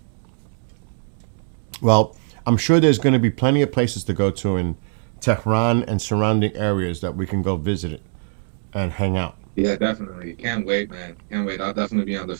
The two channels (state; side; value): silent; left; digital silence